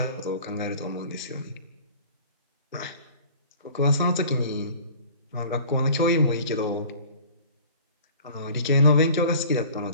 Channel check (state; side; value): inverted; both; correlation -0.46